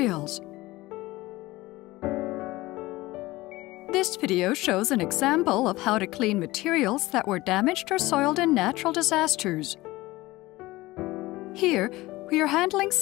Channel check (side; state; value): right; quieter; 19.2 dB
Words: This video shows an example of how to clean materials that were damaged or soiled in natural disasters. Here, we are handling